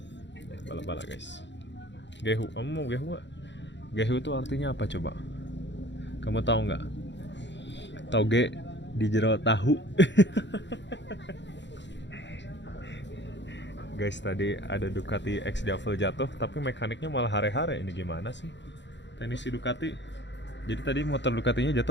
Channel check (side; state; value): right; late; 0.52 ms